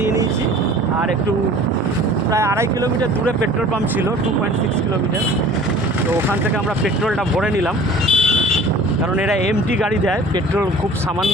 নিয়েছি। আর একটু প্রায় 2.5 কিলোমিটার দূরে পেট্রোল পাম্প ছিল, 2.6 কিলোমিটার। তো ওখান থেকে আমরা পেট্রোলটা ভরে নিলাম, কারণ এরা এমটি গাড়ি দেয়, পেট্রোল খুব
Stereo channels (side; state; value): both; normal; correlation 0.46